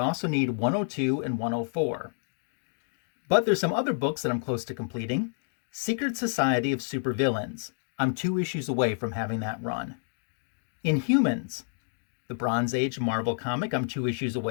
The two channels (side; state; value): right; silent; digital silence